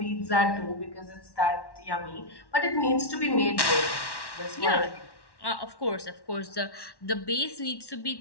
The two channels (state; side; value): late; right; 1.1 ms